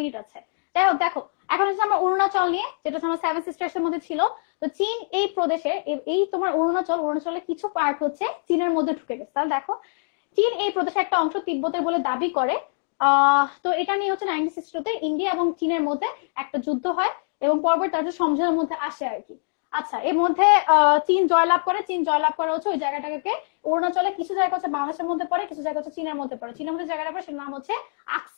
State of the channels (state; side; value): silent; right; digital silence